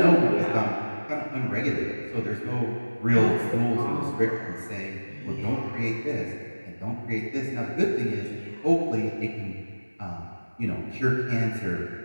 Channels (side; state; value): both; inverted; correlation -1.00